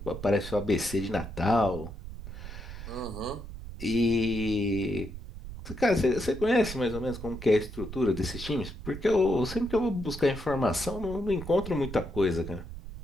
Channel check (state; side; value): noise; right; rumble, 11 dB below the sound